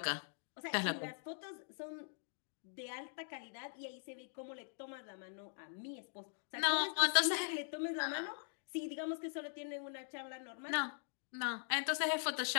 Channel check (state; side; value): silent; right; digital silence